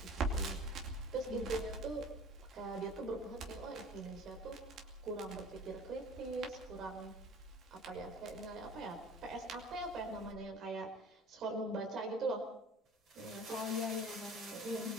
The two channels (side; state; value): both; normal; correlation 0.43